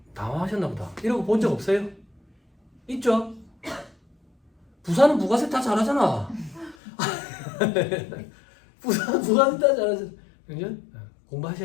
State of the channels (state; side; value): drops out; right; at 6.8 s